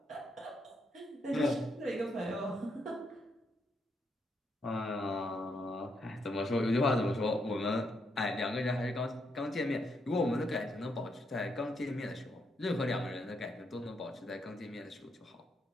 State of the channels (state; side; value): normal; both; correlation 0.78